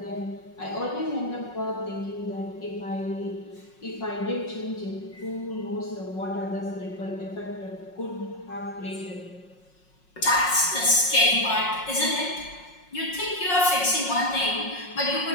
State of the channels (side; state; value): right; late; 5.5 ms